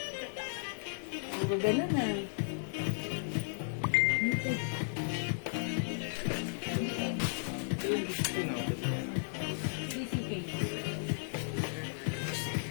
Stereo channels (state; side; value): silent; right; 55 dB below the other